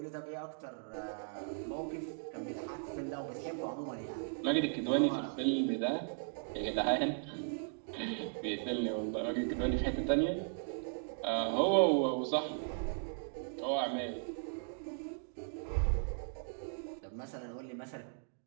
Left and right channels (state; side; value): silent; left; digital silence